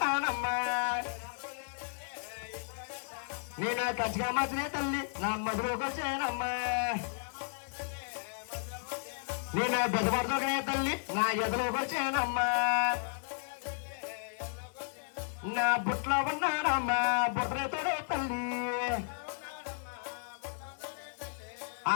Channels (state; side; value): silent; right; digital silence